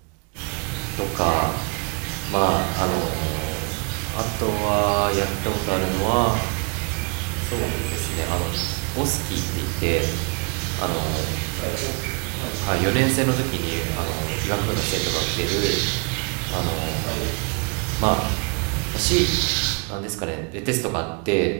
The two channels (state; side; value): quieter; left; 34.3 dB